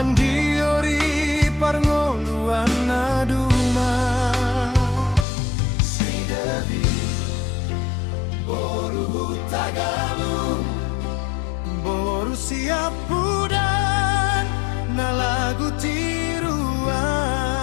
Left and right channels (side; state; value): right; drops out; at 5.2 s